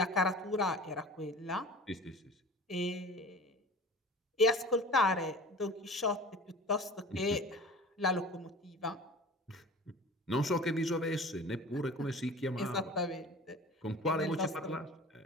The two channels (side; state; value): both; normal; correlation 0.40